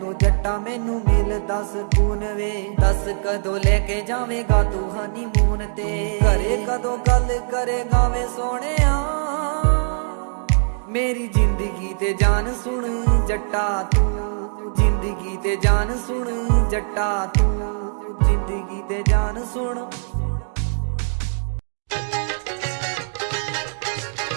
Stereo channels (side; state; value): left; silent; digital silence